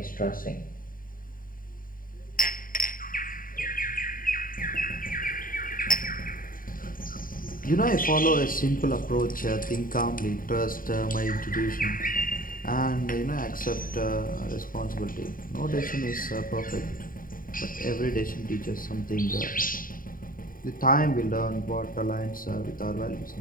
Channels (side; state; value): right; late; 0.41 ms